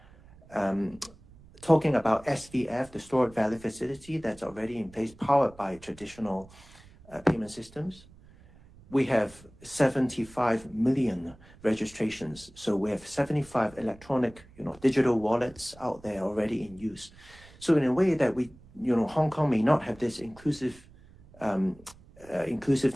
Talking about SVF, the stored value facility that's already in place, powered by traditional payment systems. We have 75 million registrations. So we have 75 electronic, digital wallets out there already in use. So in a way that we, Hong Kong may not have this inclusiveness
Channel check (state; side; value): noise; right; rumble, 24 dB below the sound